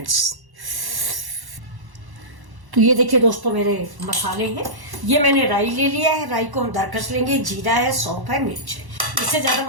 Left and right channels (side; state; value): left; late; 1.1 ms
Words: तो ये देखिए दोस्तों, मेरे मसाले हैं। ये मैंने राई ले लिया है। राई को हम दरकस लेंगे। जीरा है, सौंफ है, मिर्च है। इससे ज़्यादा